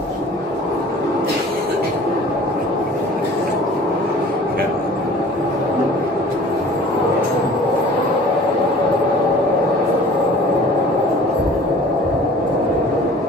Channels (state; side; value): normal; both; correlation 0.46